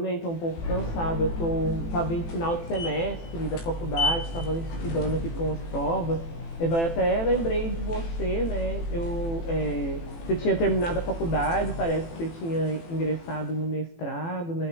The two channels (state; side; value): late; right; 18 ms